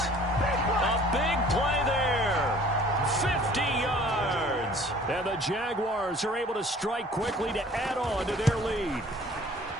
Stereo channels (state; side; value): normal; both; correlation 0.51